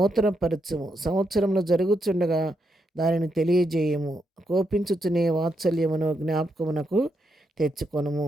సంవత్సరంలో జరుగుచుండగా దానిని తెలియజేయము. కోపించుచునే వాత్సల్యమును జ్ఞాపకమునకు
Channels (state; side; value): normal; both; correlation 0.81